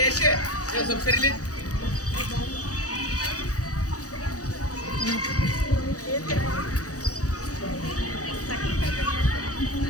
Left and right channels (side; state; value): right; late; 0.66 ms